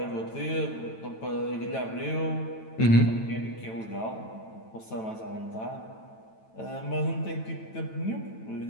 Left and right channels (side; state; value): right; late; 9.1 ms